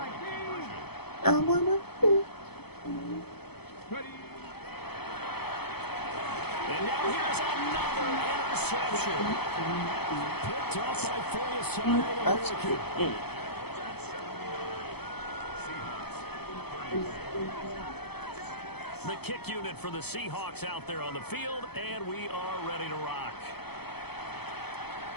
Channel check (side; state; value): right; late; 0.97 ms